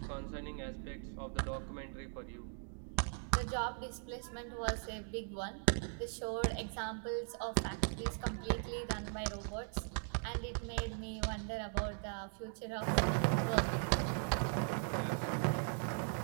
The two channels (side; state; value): left; silent; 52 dB below the other